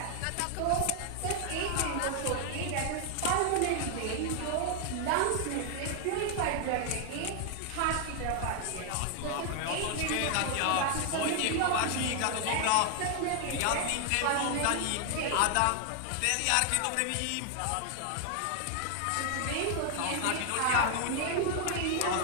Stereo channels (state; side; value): different; both; correlation 0.00